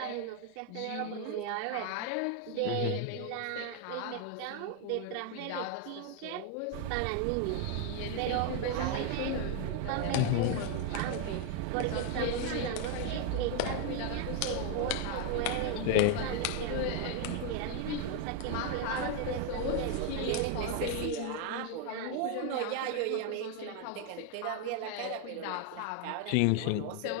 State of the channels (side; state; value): both; different; correlation 0.01